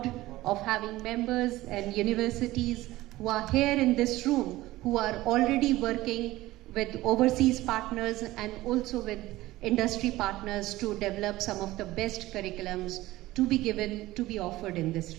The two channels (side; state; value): left; quieter; 17.5 dB